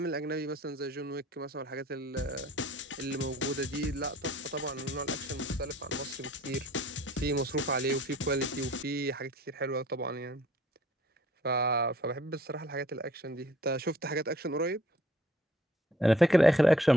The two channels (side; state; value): both; normal; correlation 0.58